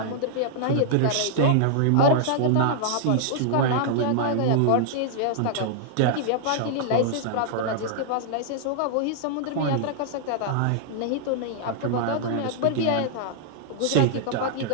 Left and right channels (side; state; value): both; different; correlation -0.01